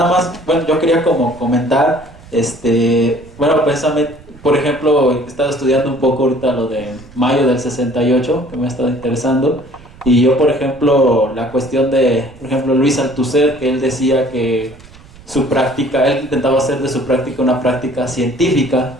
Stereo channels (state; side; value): noise; right; rumble, 22 dB below the sound